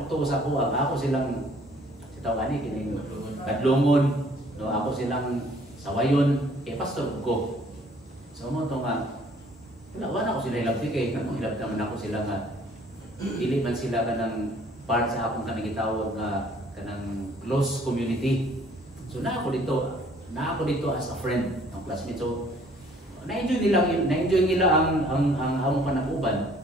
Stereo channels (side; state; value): both; normal; correlation 0.58